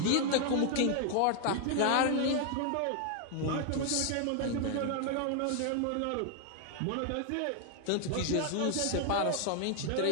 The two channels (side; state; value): both; different; correlation 0.00